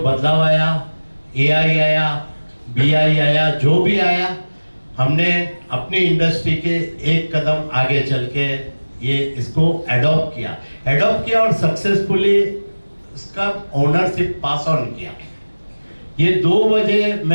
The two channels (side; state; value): both; inverted; correlation -1.00